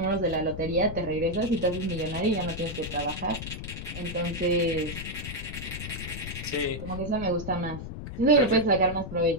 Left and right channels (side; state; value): left; noise; rumble, 8 dB below the sound